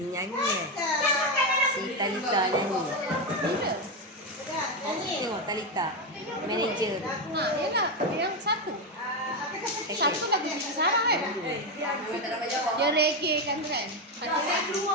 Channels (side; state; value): both; normal; correlation 0.09